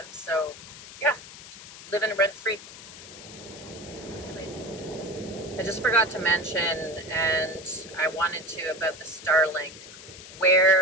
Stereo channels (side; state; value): left; noise; hiss, 15 dB below the sound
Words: So yeah, living rent free. See you later. I just forgot to mention, and I wanted to, about the Starlink.